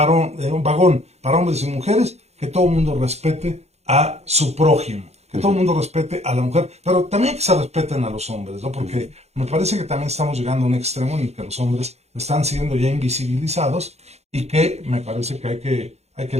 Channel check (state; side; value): late; left; 0.31 ms